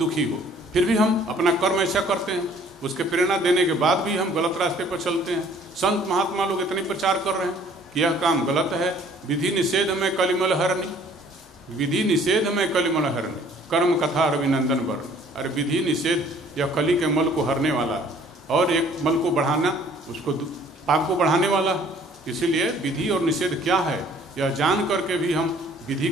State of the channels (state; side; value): normal; both; correlation 0.56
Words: हो, फिर भी हम अपना कर्म ऐसा करते हैं, उसके प्रेरणा देने के बाद भी हम गलत रास्ते पर चलते हैं। संत महात्मा लोग इतने प्रचार कर रहे हैं कि यह काम गलत है, विधि निषेध में कलिमल हरणी, विधि निषेध में कलिमल हरणी, कर्म कथा रविनंदन वर्ण। अरे विधि निषेध यह कली के मल को हरने वाला है, और एक मल को बढ़ाना, उसको पाप को बढ़ाने वाला है। इसीलिए विधि और निषेध क्या है यह जान करके भी हम विधि